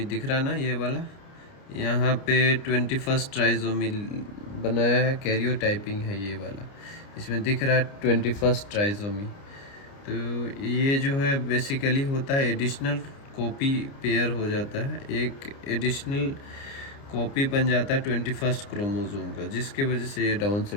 दिख रहा ना, ये वाला यहाँ पे 21st ट्राइजोमी बनाया है, कैरियोटाइपिंग है ये वाला, इसमें दिख रहा है 21st ट्राइजोमी। तो ये जो है बेसिकली होता है एडिशनल कॉपी पेयर हो जाता है, एक एडिशनल कॉपी बन जाता है 21st क्रोमोसोम का, जिसके वजह से ये डाउन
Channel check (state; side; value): late; right; 29 ms